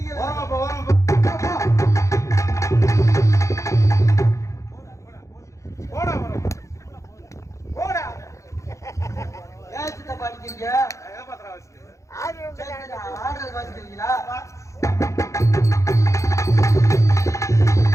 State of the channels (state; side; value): late; right; 0.15 ms